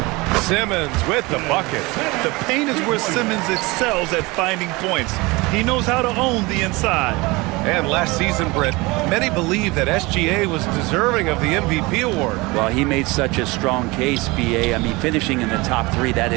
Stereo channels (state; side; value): quieter; left; 23.6 dB